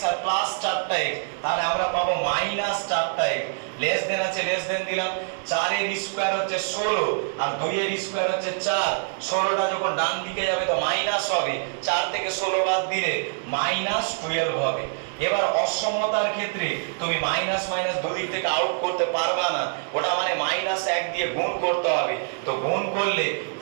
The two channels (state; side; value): silent; left; digital silence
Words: আর +4টা x, তাহলে আমরা পাবো -4টা x, লেস দেন আছে লেস দেন দিলাম, 4 এর স্কয়ার হচ্ছে 16 আর 2 এর স্কয়ার হচ্ছে 4, 16টা যখন ডান দিকে যাবে তো মাইনাস হবে, 4 থেকে 16 বাদ দিলে -12 হবে। এবার অসমতার ক্ষেত্রে তুমি মাইনাস দুদিক থেকে আউট করতে পারবা না, ওটা মানে -1 দিয়ে গুণ করতে হবে, তো গুণ করলে